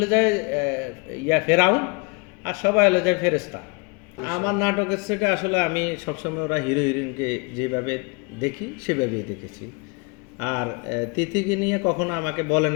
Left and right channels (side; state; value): right; quieter; 30.6 dB